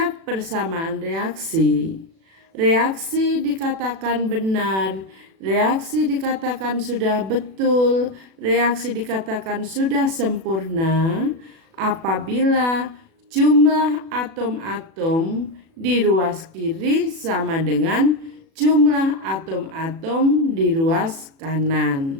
persamaan reaksi, reaksi dikatakan benar, reaksi dikatakan sudah betul, reaksi dikatakan sudah sempurna apabila jumlah atom-atom di ruas kiri sama dengan jumlah atom-atom di ruas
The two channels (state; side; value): late; left; 36 ms